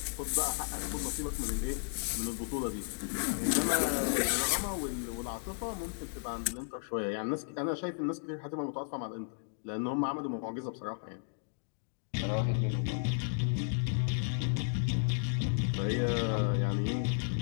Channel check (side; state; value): right; silent; digital silence